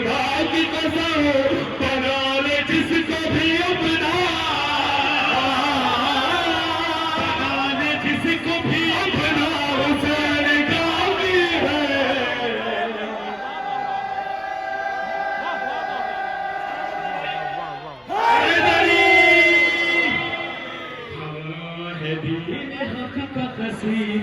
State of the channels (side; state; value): both; identical; correlation 1.00